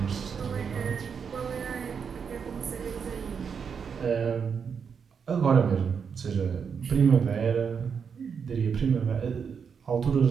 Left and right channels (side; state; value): left; quieter; 6.5 dB